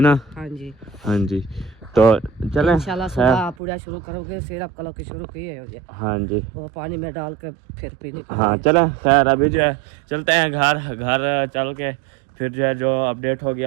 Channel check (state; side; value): drops out; left; at 3.6 s